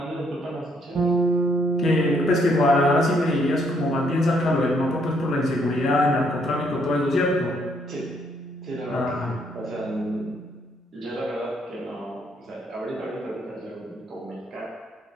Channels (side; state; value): both; normal; correlation 0.70